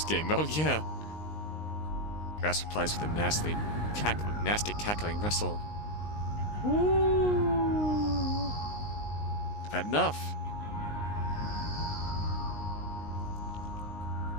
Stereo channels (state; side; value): late; right; 19 ms